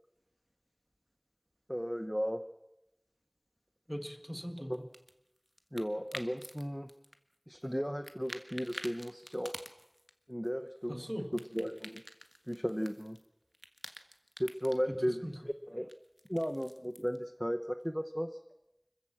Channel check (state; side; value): identical; both; correlation 1.00